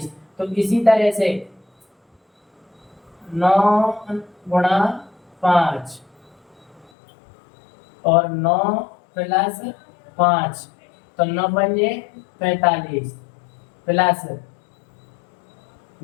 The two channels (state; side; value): drops out; right; at 6.9 s